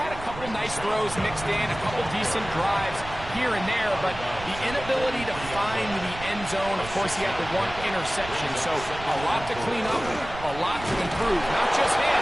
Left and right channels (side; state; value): right; noise; rumble, 13 dB below the sound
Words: a couple nice throws mixed in, a couple decent drives here and there, but the inability to find the end zone, of course, he had the 1 interception, so a lot to clean up, a lot to improve. Not just